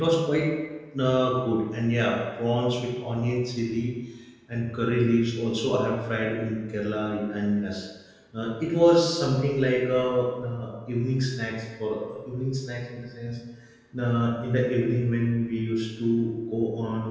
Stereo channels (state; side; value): identical; both; correlation 1.00